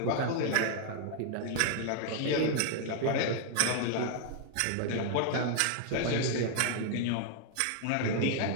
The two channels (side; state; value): both; different; correlation 0.00